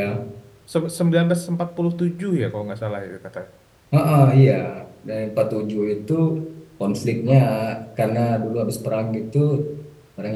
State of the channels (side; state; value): both; identical; correlation 1.00